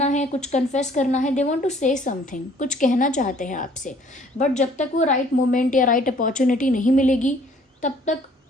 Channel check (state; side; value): normal; both; correlation 0.57